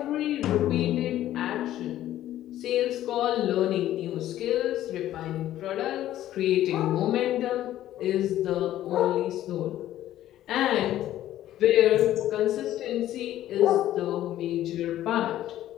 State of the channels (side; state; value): right; quieter; 13.1 dB